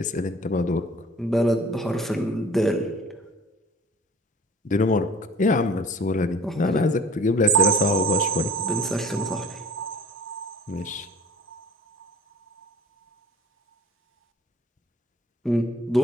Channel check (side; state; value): both; normal; correlation 0.46